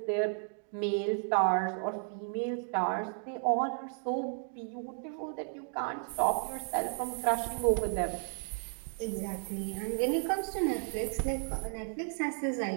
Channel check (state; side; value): silent; left; 55 dB below the other